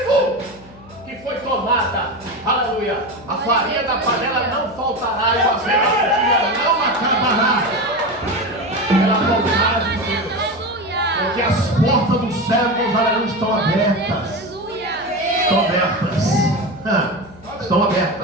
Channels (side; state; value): left; noise; hum, 22 dB below the sound